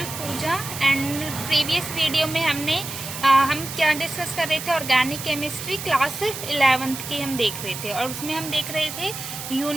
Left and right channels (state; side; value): noise; right; hiss, 8 dB below the sound